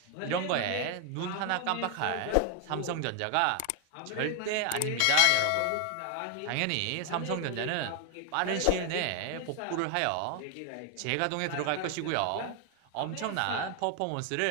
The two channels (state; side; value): different; both; correlation 0.00